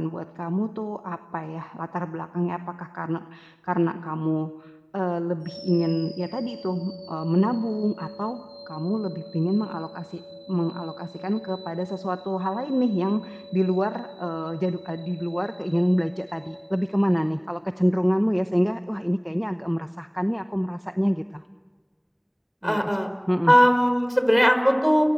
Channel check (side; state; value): both; identical; correlation 1.00